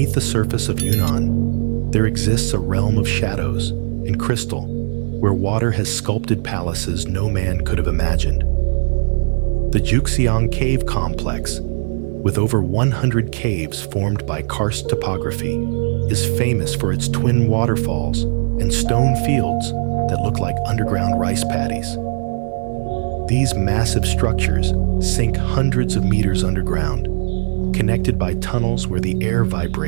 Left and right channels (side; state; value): left; silent; 64 dB below the other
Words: the surface of Yunnan, there exists a realm of shadows and crystal, where water has sculpted palaces no man could have imagined. The Juxiang Cave Complex, with over 100 caves formed by karst topography, is famous for its twin waterfalls and stone fields that look like underground rice paddies. These massive structures sink hundreds of meters underground, connected by tunnels where the air